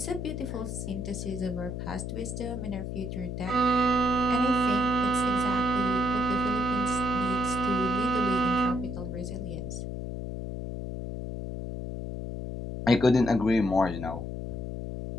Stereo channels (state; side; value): noise; left; hum, 5 dB below the sound